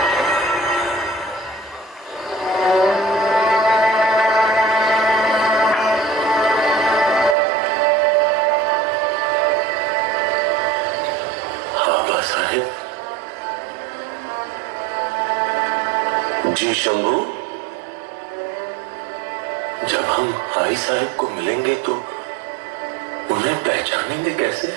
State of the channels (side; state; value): left; drops out; at 7.4 s